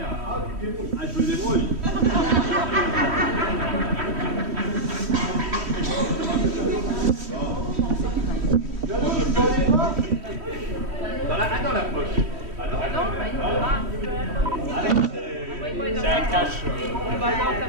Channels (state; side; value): late; left; 3.1 ms